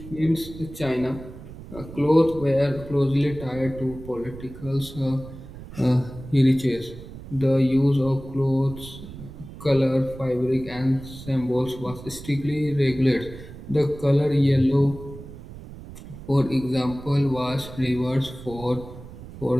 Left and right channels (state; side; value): noise; right; rumble, 14 dB below the sound